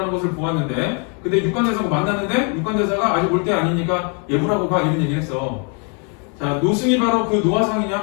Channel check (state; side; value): quieter; right; 37.5 dB